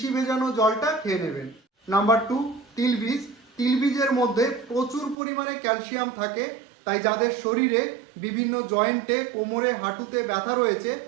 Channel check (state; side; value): drops out; left; at 5.2 s